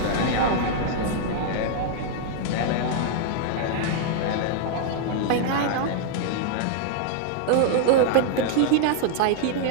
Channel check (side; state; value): both; different; correlation -0.01